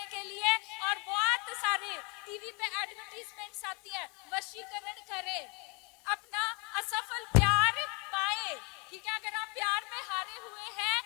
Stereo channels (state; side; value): quieter; right; 31.2 dB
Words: के लिए। और बहुत सारे टीवी पे एडवर्टीजमेंट्स आती है, वशीकरण करें, अपना असफल प्यार पाए। ठीक है, अगर आप प्यार में हारे हुए हैं